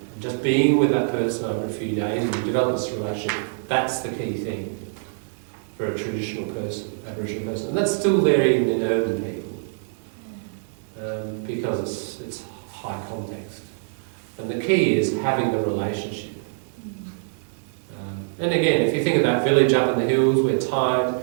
And just being with that person over a few days and you develop this relationship, that's the key thing for a traditional person, Aboriginal person. And that's still there even in urban people because it's high context. And the key is having the relationship. And again, if you think of that village up in the hills where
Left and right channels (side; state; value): left; silent; 62 dB below the other